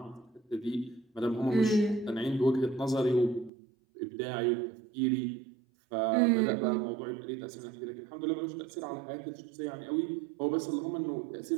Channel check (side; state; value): left; drops out; at 3.5 s